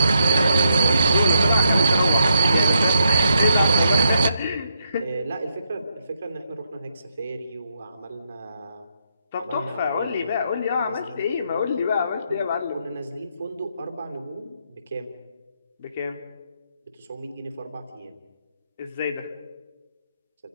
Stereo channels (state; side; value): inverted; both; correlation -0.78